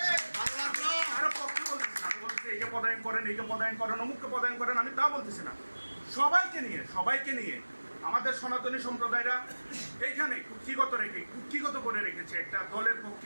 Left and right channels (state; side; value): inverted; both; correlation -1.00